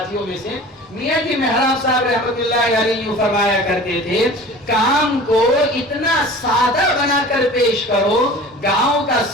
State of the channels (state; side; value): normal; both; correlation 0.41